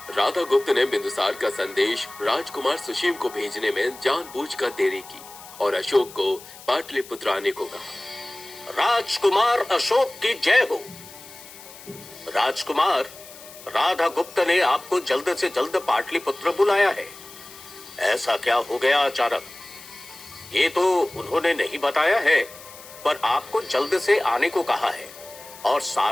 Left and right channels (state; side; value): noise; left; hiss, 18 dB below the sound